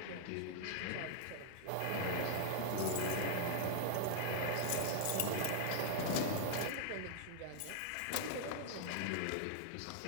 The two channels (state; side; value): different; both; correlation 0.00